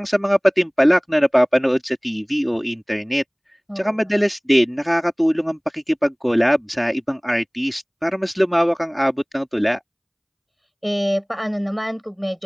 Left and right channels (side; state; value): both; identical; correlation 1.00